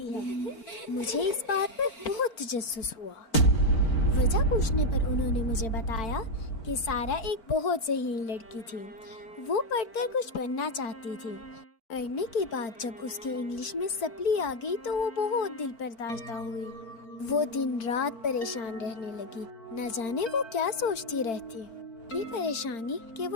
ہے. مجھے اس بات پر بہت تجسس ہوا. وجہ پوچھنے پر انہوں نے مجھے بتایا کہ سارا ایک بہت ذہین لڑکی تھی. وہ پڑھ کر کچھ بننا چاہتی تھی. پڑھنے کے بعد جب اس کے انگلش میں سپلی آ گئی تو وہ بہت دل پرداشتہ ہوئی. وہ دن رات پریشان رہنے لگی. نہ جانے وہ کیا سوچتی رہتی. اتنی پریشانی کہ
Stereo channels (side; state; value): right; late; 4.5 ms